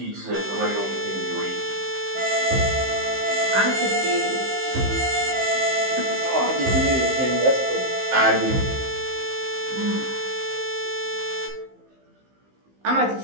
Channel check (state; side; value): late; left; 15 ms